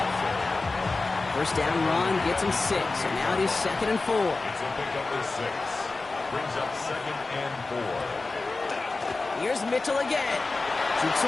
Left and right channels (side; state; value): right; quieter; 3.6 dB